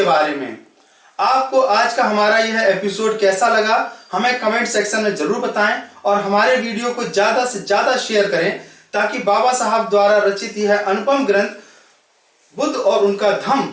बारे में। आपको आज का हमारा यह एपिसोड कैसा लगा हमें कमेंट सेक्शन में जरूर बताएं और हमारे वीडियो को ज्यादा से ज्यादा शेयर करें ताकि बाबा साहब द्वारा रचित यह अनुपम ग्रंथ बुद्ध और उनका धम्म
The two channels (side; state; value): both; identical; correlation 1.00